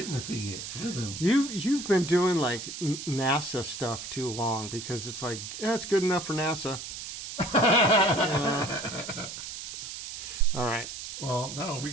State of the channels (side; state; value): right; noise; hiss, 9 dB below the sound